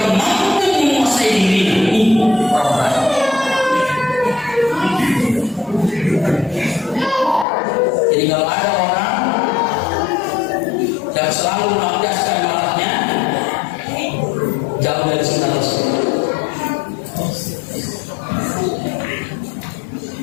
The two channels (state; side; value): drops out; right; at 7.5 s